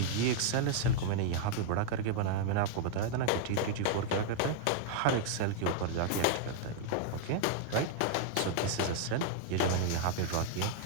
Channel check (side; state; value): both; different; correlation -0.01